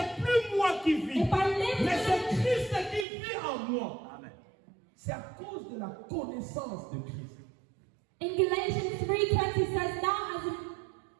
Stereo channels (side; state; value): left; drops out; at 3.1 s